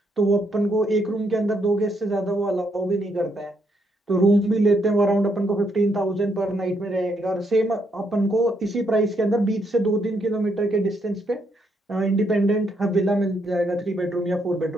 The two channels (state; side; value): normal; both; correlation 0.75